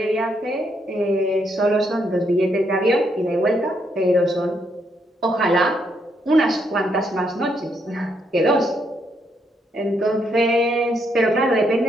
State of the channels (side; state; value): both; normal; correlation 0.75